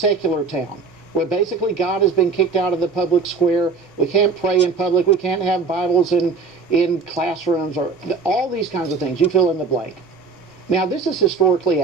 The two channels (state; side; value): quieter; left; 4.8 dB